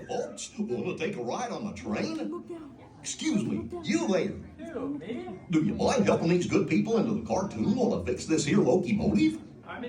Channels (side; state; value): both; identical; correlation 1.00